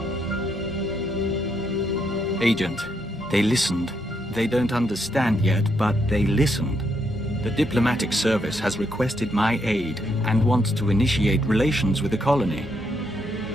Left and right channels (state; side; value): normal; both; correlation 0.77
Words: Agent, they listened. They don't understand yet, but they listened. The diplomatic service has requested my aid and wants to initiate relations with the colony.